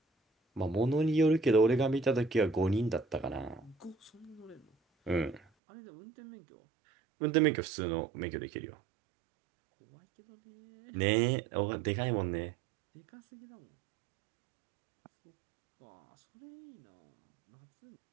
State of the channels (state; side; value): drops out; left; at 5.4 s